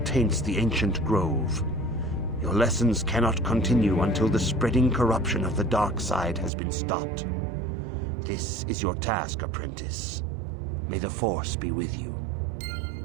the ancient grove. Your lessons cannot continue until the spreading corruption of the dark side has been stopped. This is your task, apprentice. May the Force be with you.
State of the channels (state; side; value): drops out; left; at 6.5 s